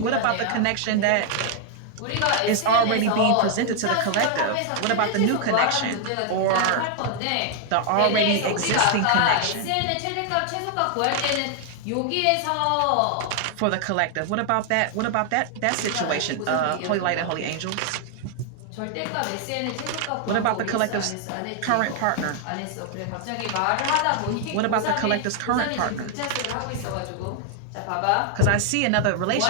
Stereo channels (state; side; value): different; both; correlation 0.00